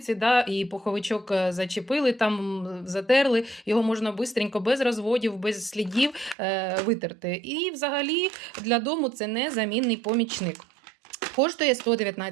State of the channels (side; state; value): left; drops out; at 6.4 s